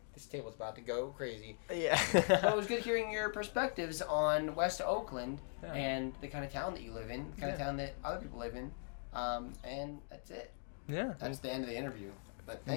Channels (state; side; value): silent; right; 51 dB below the other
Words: table's about to go crazy. Yeah. But it was good hearing your perspectives on West Oakland and the kind of town that you live in, the kind of town that other people live in. And that's it. Yeah. That's the end of the interview. But